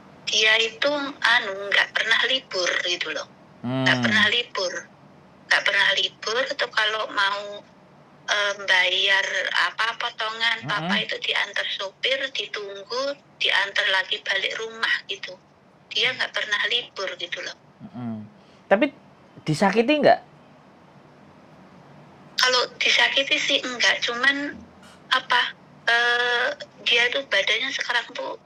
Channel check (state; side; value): identical; both; correlation 1.00